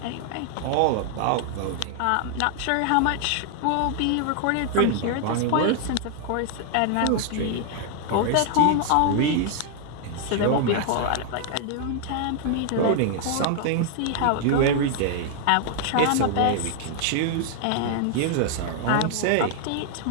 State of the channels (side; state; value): both; different; correlation 0.00